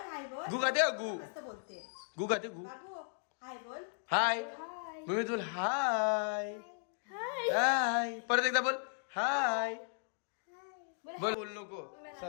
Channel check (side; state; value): right; silent; digital silence